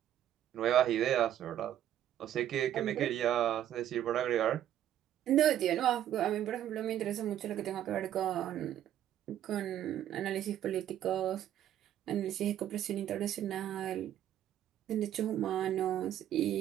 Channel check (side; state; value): left; quieter; 11.3 dB